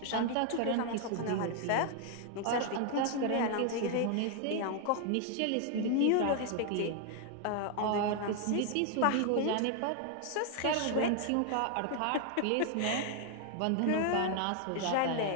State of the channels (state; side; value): different; both; correlation 0.00